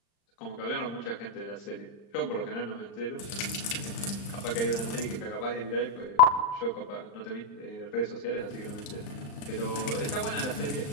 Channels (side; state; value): right; late; 35 ms